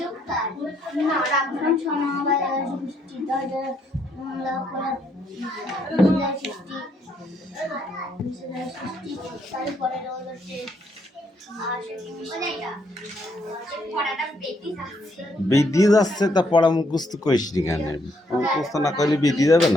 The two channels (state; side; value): normal; both; correlation 0.72